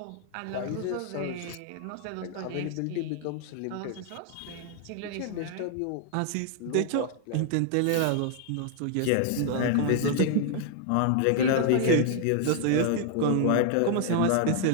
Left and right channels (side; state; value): both; different; correlation 0.00